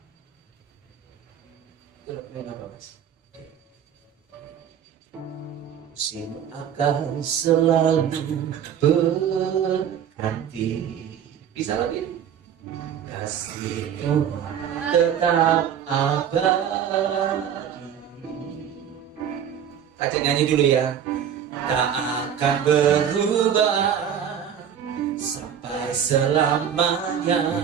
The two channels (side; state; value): left; quieter; 8.8 dB